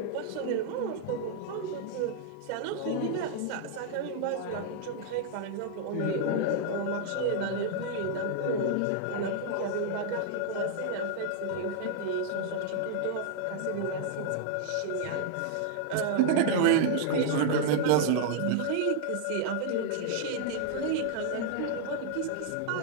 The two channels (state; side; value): different; both; correlation -0.01